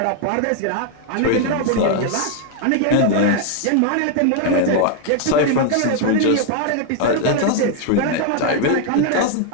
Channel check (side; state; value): both; different; correlation 0.00